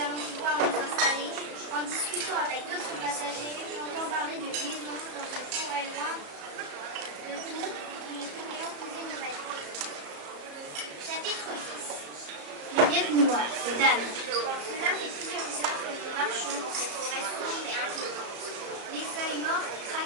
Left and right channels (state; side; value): late; left; 34 ms